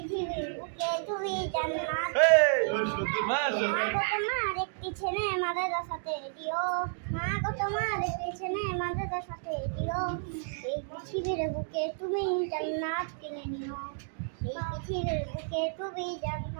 বুকে তুমি জান্নাত মা গো তোমার একটি ছেলে মাদ্রাসাতে দিও। মা গো তোমার একটি ছেলে মাদ্রাসাতে দিও। এই পৃথিবীর বুকে তুমি জান্নাত কিনে নিও। এই পৃথিবীর বুকে তুমি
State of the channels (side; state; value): left; silent; digital silence